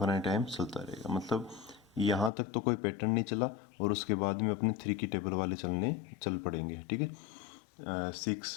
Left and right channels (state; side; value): drops out; right; at 2.3 s